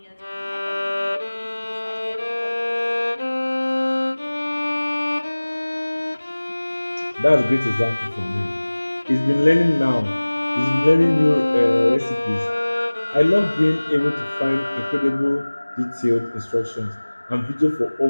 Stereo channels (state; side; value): inverted; both; correlation -1.00